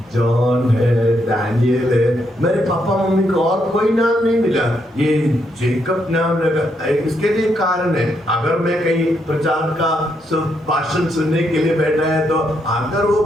जॉन है, दानियल है। मेरे पापा मम्मी को और कोई नाम नहीं मिला, ये जेकब नाम लगा। इसके लिए कारण है, अगर मैं कहीं प्रचार का भाषण सुनने के लिए बैठा है, तो अगर वो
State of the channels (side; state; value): both; normal; correlation 0.77